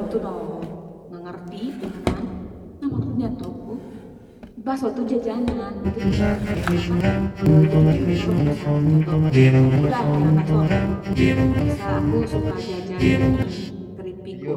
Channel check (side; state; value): both; identical; correlation 1.00